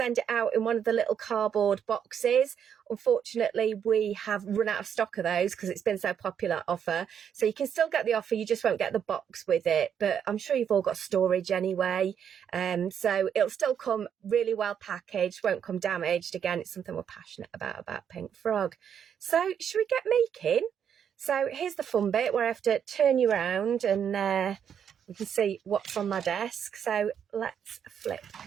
it out in one of the little cardboard boxes. Unfortunately, we have run out of stock of those because it's been so popular offer. So you can still get the offer, you just won't get the box with it. But I'm sure you've all got storage anyway. So it'll still come really well packaged, won't come damaged. Again, it's something we're passionate about Pink Frog. So should we get making? So here's the fun bit where I have to turn you around and we can see what's on my desk. So let's flip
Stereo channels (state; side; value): quieter; left; 8.3 dB